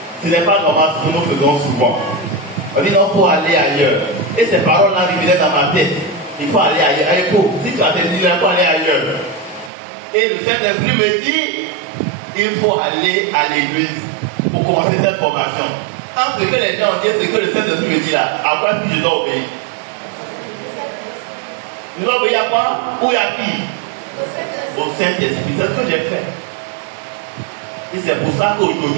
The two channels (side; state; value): left; drops out; at 9.7 s